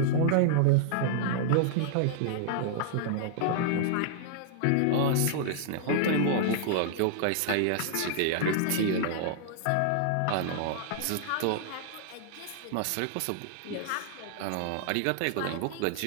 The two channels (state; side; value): different; both; correlation -0.01